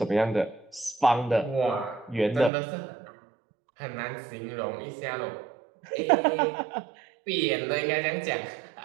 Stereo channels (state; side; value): drops out; left; at 2.5 s